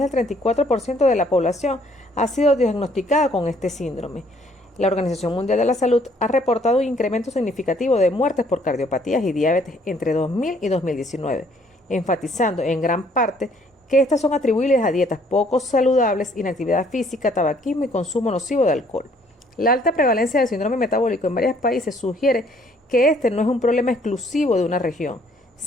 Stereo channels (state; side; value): normal; both; correlation 0.63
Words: 34% de la población ha sido diagnosticada con este síndrome. La Organización Mundial de la Salud ha reportado un incremento significativo de muertes por cardiopatías y diabetes entre 2000 y 2019, enfatizando en gran parte que estas son atribuibles a dietas poco saludables, inactividad física, tabaquismo y consumo nocivo de alcohol. La alta prevalencia del síndrome metabólico en varios países sugiere que este no es un problema exclusivo de una región,